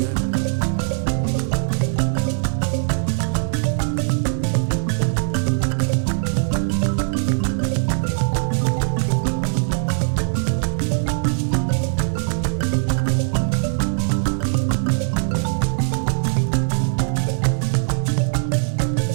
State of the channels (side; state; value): left; silent; digital silence